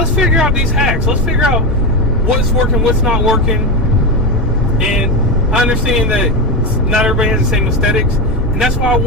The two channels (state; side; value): normal; both; correlation 0.13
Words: figure out these hacks. Let's figure out what's working, what's not working. And I understand that not everybody has the same aesthetics, and that's why I